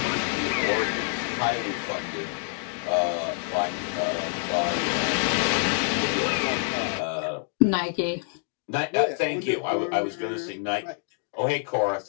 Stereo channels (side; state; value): right; silent; 60 dB below the other